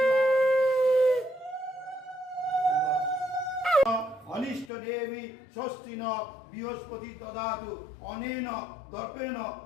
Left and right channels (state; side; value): drops out; right; at 4.7 s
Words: অনিষ্ট দেবী স্বস্তি ন বৃহস্পতি দদাতু অনেন দর্পেণ